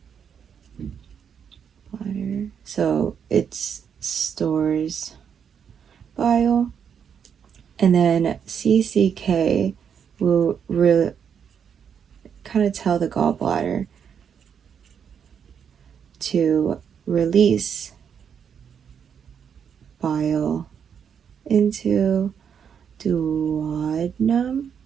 So it stores bile. And then CCK will really kind of tell the gallbladder to release bile into duodenum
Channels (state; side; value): quieter; left; 7.5 dB